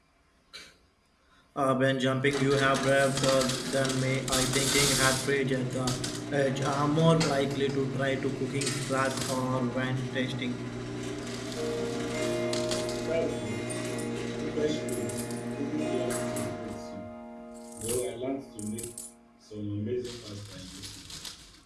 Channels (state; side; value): identical; both; correlation 1.00